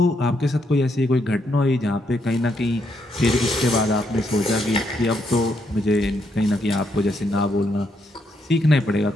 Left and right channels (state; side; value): normal; both; correlation 0.76